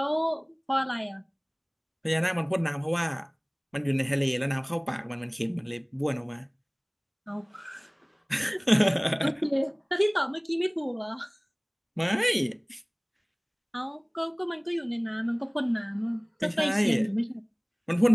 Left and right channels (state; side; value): identical; both; correlation 1.00